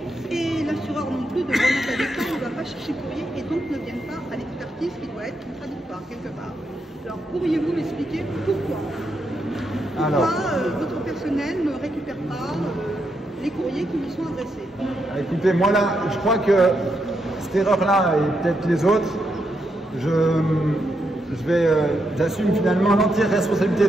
et l'assureur non plus de Grenoble Habitat ne va pas chercher le courrier, et donc ne viennent pas à l'expertise qui doit être contradictoire quelque part. Alors pourriez-vous m'expliquer pourquoi votre personnel ne récupère pas les courriers qui lui sont adressés? Écoutez, moi là, je crois que cette erreur-là, et peut-être les autres, j'assume finalement l'entière responsabilité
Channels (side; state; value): both; normal; correlation 0.81